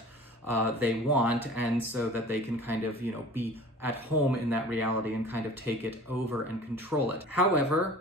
they want, and so that they can kind of, be at home in that reality and kind of take it over and control it.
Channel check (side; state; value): both; normal; correlation 0.42